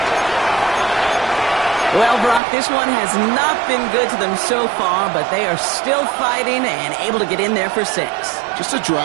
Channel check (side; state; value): left; drops out; at 2.4 s